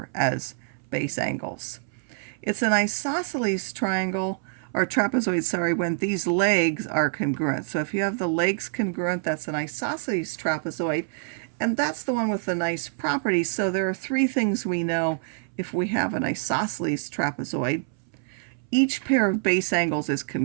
as base angles. It's an isosceles triangle, or trapezoid, sorry, when these legs are congruent. So if you have the legs congruent, that's an isosceles trapezoid, and that's the one with the nice properties. So there are three things we know if we have an isosceles trapezoid. Each pair of base angles is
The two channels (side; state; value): left; silent; 61 dB below the other